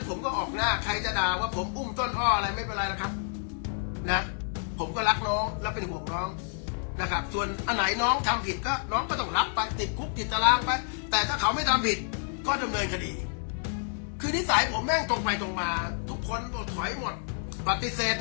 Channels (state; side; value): silent; right; 58 dB below the other